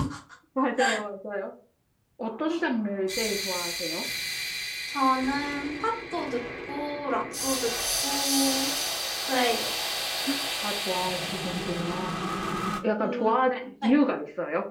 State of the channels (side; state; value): both; identical; correlation 1.00